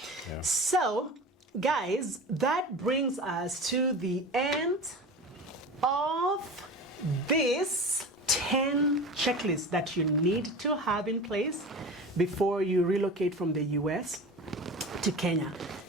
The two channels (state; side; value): normal; both; correlation 0.33